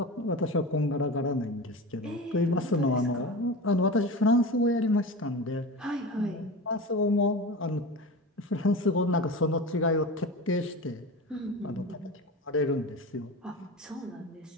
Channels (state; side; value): normal; both; correlation 0.29